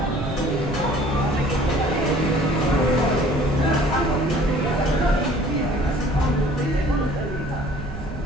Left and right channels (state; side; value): noise; right; rumble, 10 dB below the sound